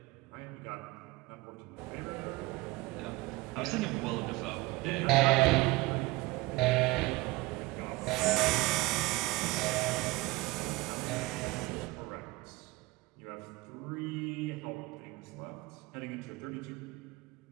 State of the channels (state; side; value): quieter; left; 20.6 dB